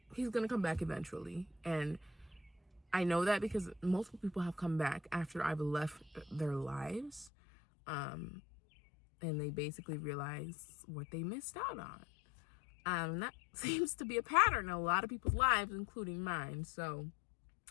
He's going to come back eventually. And I know that because multiple people have come back after I've left their lives. And they basically realize what they missed out on. That seems to be a pattern in a lot of people's lives, including mine. So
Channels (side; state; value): right; drops out; at 7.3 s